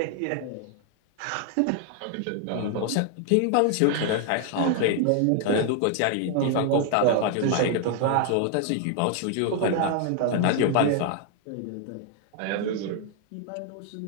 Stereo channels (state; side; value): different; both; correlation 0.00